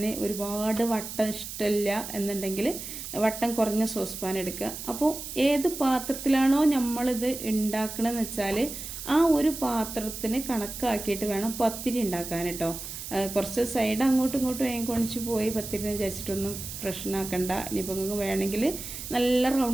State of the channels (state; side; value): noise; right; hiss, 9 dB below the sound